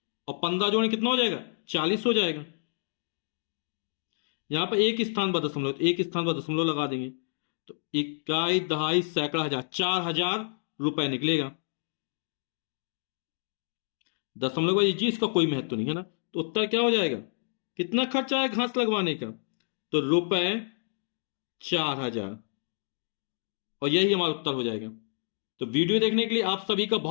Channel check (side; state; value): right; silent; digital silence